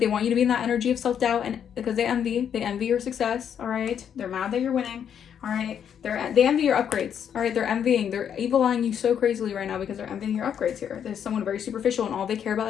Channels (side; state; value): right; quieter; 8.5 dB